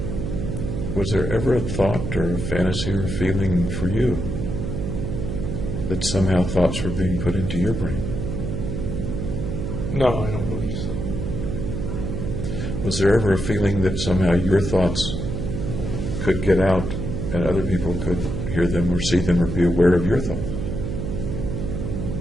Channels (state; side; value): noise; right; hum, 3 dB below the sound